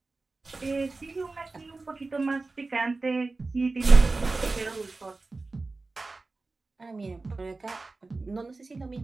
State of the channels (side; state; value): left; quieter; 3.5 dB